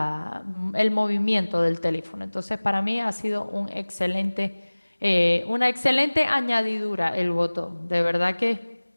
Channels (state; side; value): inverted; both; correlation -1.00